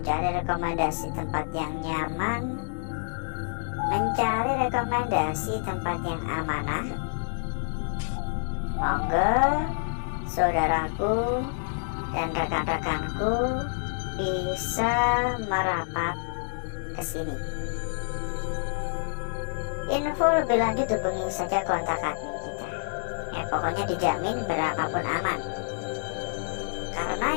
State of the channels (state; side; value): silent; right; digital silence